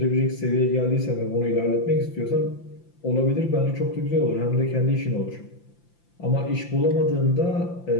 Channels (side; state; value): right; late; 5.8 ms